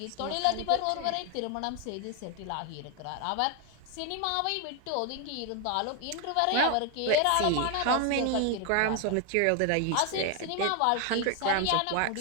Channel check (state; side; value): different; both; correlation 0.00